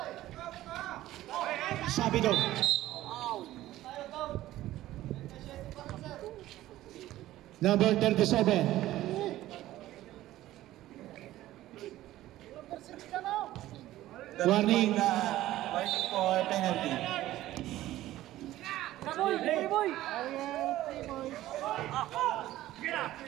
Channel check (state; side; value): quieter; left; 15.0 dB